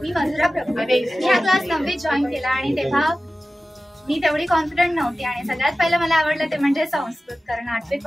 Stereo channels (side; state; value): both; normal; correlation 0.96